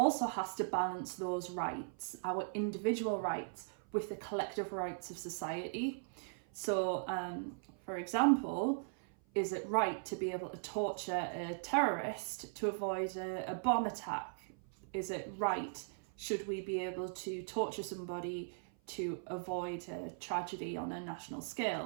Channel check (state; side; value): silent; left; 52 dB below the other